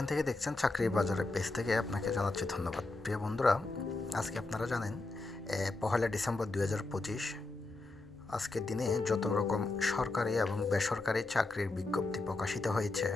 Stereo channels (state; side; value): quieter; right; 3.2 dB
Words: থেকে দেখছেন চাকরির বাজারের পেজ থেকে আপনাকে জানাচ্ছি ধন্যবাদ। প্রিয় বন্ধুরা, আজকে আপনারা জানেন 1 ডিসেম্বর 2025 আজকের দিনে যত রকম সরকারি এবং বেসরকারি চাকরির বিজ্ঞপ্তি প্রকাশিত হয়েছে,